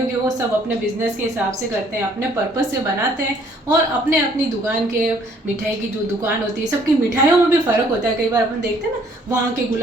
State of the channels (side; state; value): both; normal; correlation 0.62